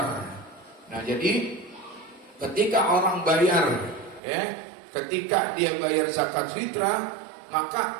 Nah, jadi ketika orang bayar, ketika dia bayar zakat fitrah,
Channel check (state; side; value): drops out; left; at 4.2 s